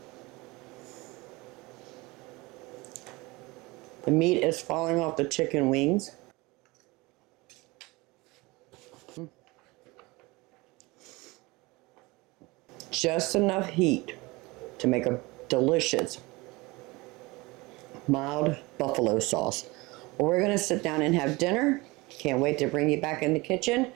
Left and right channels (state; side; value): quieter; left; 23.3 dB